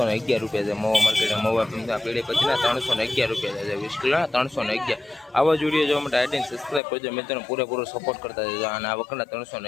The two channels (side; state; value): right; drops out; at 6.8 s